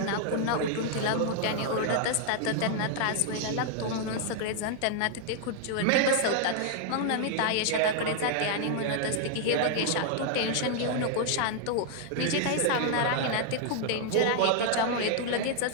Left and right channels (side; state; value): both; different; correlation 0.00